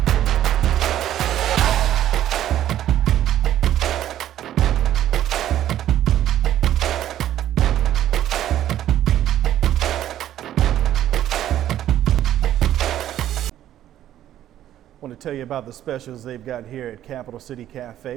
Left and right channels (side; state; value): left; quieter; 12.0 dB